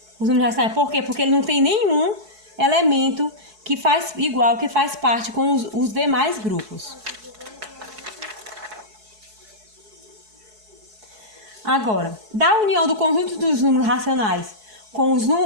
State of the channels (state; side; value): late; left; 4.7 ms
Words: Os números racionais, por quê? Porque ele não tem nenhum elemento que faz parte com os demais grupos. Agora, da união do conjunto dos números racionais com